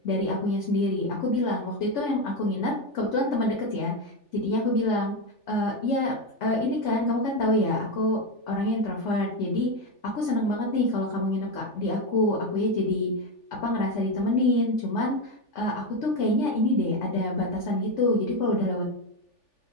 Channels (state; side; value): late; right; 3.4 ms